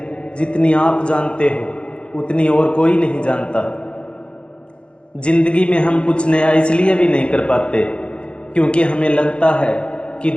जितनी आप जानते हो उतनी और कोई नहीं जानता। ज़िंदगी में हम कुछ नया इसलिए भी नहीं कर पाते क्योंकि हमें लगता है कि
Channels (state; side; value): late; right; 0.056 ms